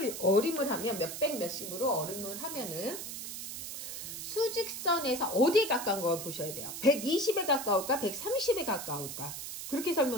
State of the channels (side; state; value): right; noise; hiss, 7 dB below the sound